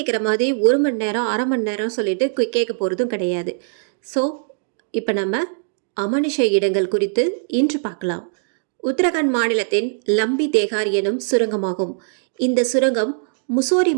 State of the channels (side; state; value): left; silent; digital silence